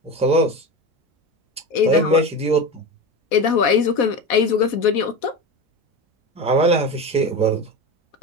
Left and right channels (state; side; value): normal; both; correlation 0.24